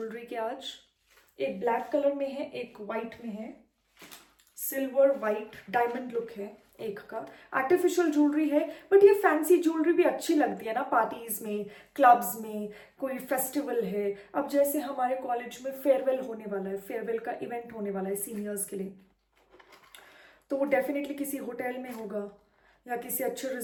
के आज. एक ब्लैक कलर में है, एक वाइट में है, सिल्वर वाइट डायमंड लुक है एक का. आर्टिफिशियल ज्वेलरी है, बट ये फैंसी ज्वेलरी भी अच्छी लगती है ना पार्टीज में, क्लब्स में, कोई फेस्टिवल है. अब जैसे हमारे कॉलेज में फेयरवेल होने वाला है, फेयरवेल का इवेंट होने वाला है सीनियर्स के लिए, तो वो डेफिनेटली किसी होटल में होगा या किसी अच्छे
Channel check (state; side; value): identical; both; correlation 1.00